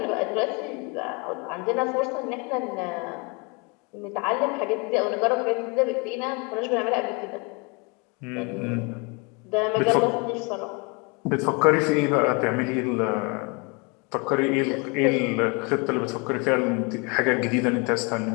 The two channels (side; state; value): right; quieter; 31.1 dB